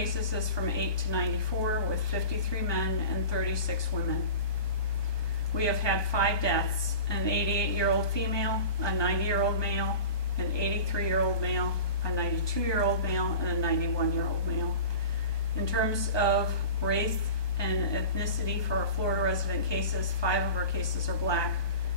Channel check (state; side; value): late; right; 1.2 ms